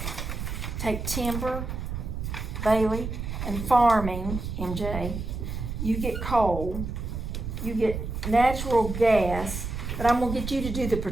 take timber, Bailey, and farming, MJ. You get coal, you get natural gas, but I'm gonna get you to do the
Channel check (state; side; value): noise; right; rumble, 5 dB below the sound